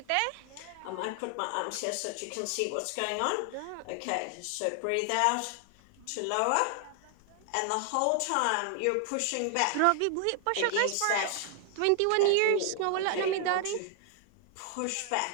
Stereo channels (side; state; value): both; different; correlation 0.00